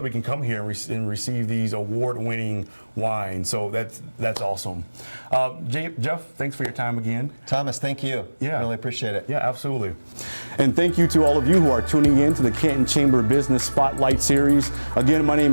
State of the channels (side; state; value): both; inverted; correlation -1.00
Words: we can come here and receive these award-winning wines. So that's awesome. Jeff, thanks for your time again. Thomas, thank you. Yeah, really appreciate it. Yeah, absolutely. And thank you to all of you who are tuning in to the Canton Chamber Business Spotlight Series. Again, my name